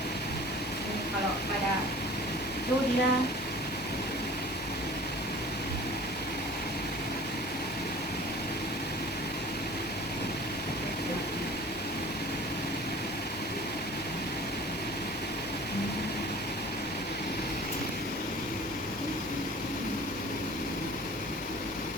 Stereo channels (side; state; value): both; normal; correlation 0.45